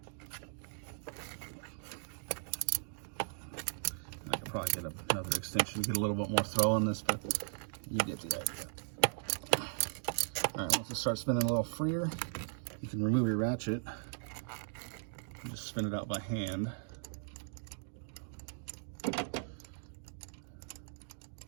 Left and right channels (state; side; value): silent; left; digital silence